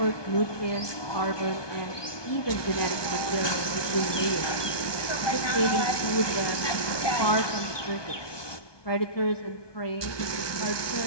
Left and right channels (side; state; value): right; late; 1.2 ms